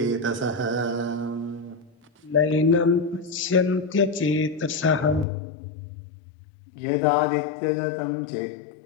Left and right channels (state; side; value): drops out; right; at 5.2 s